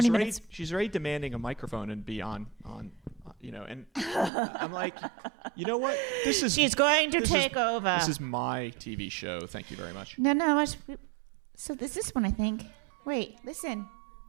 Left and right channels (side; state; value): left; drops out; at 4.3 s